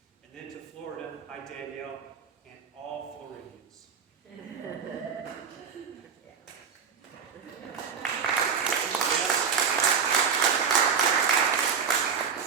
and then to Florida, hi Danielle, and all Floridians.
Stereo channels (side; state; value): left; quieter; 6.5 dB